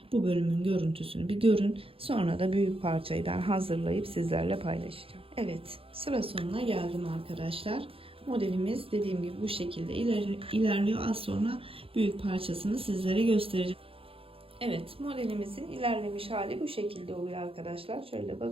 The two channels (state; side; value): late; left; 0.27 ms